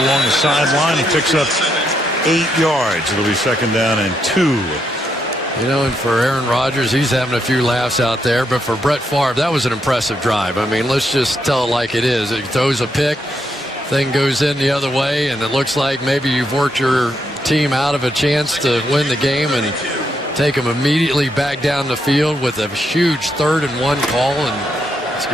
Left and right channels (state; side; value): normal; both; correlation 0.79